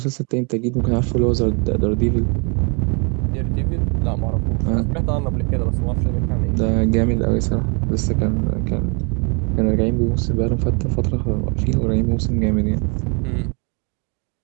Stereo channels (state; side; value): quieter; left; 35.2 dB